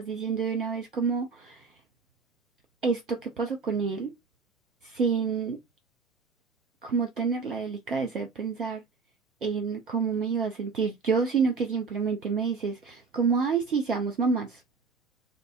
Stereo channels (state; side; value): quieter; left; 5.0 dB